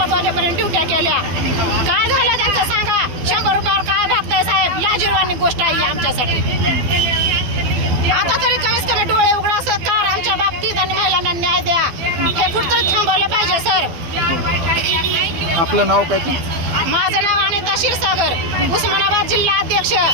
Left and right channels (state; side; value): late; left; 12 ms